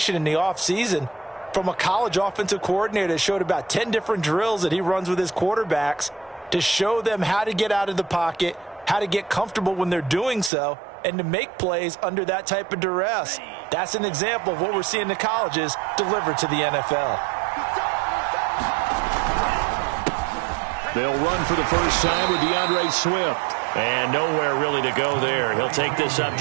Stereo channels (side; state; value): left; drops out; at 10.5 s